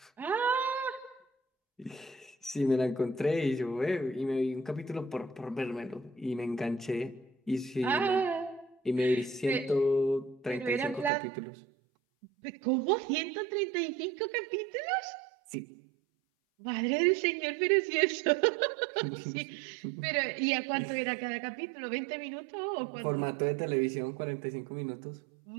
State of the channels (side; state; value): left; drops out; at 11.1 s